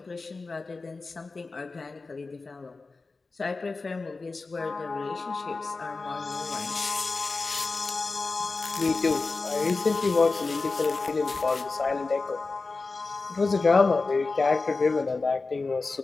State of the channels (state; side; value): quieter; right; 3.8 dB